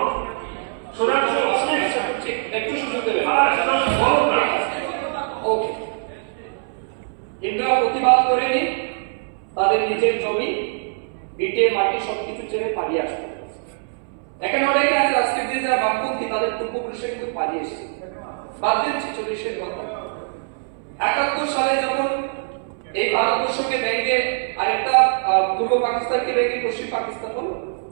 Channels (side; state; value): left; silent; 64 dB below the other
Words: সুধাংশু, একটু সুযোগ দেবেন। ওকে, হিন্দুরা প্রতিবাদ করেনি, তাদের নিজের জমি, ভিটে, মাটি সবকিছু ছেড়ে পালিয়ে আসবে। এখানে অনেকে আছে আজকের দিনে যারা বামপন্থী, তাদের পূর্বপুরুষরা কিন্তু পালিয়ে এসেছে। বাদ দিন 46-এর কথা। 71 সালে যখন এই ভারতবর্ষকে ভেঙে আরেকটা পূর্ব পাকিস্তানকে ভেঙে পশ্চিম পাকিস্তান হলো,